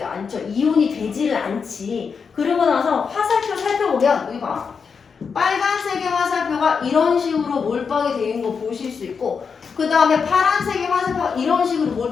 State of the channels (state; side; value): quieter; right; 5.8 dB